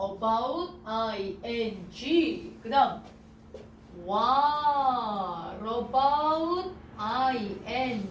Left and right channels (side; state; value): both; identical; correlation 1.00